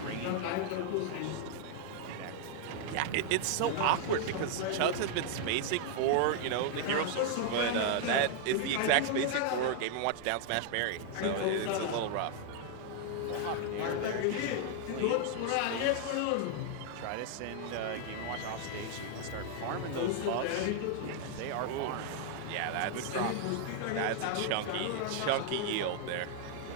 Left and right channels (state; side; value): different; both; correlation 0.00